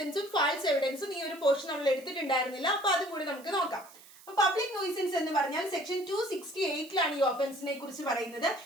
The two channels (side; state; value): right; noise; hiss, 22 dB below the sound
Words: ഫാൾസ് എവിഡൻസും ഈ ഒരു പോർഷൻ നമ്മൾ എടുത്തിട്ടുണ്ടായിരുന്നില്ല, അപ്പൊ അതും കൂടി നമുക്ക് നോക്കാം. പബ്ലിക് നോയിസൻസ് എന്ന് പറഞ്ഞാൽ സെക്ഷൻ 268 ഈ ഒഫൻസിനെ കുറിച്ച് പറയുന്നത്.